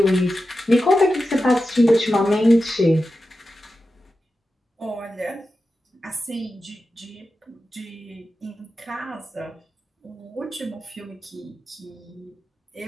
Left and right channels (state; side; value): normal; both; correlation 0.92